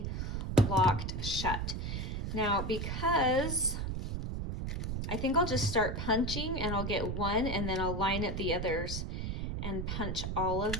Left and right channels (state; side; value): noise; right; rumble, 3 dB below the sound